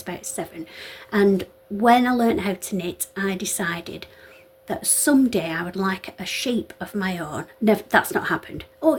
7, and when I learned how to knit, I decided that someday I would like a sheep of my own. Never, that's not happened. Oh,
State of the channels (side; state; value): both; identical; correlation 1.00